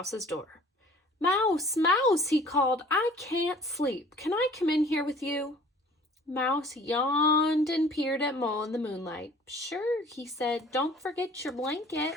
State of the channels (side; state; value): both; normal; correlation 0.50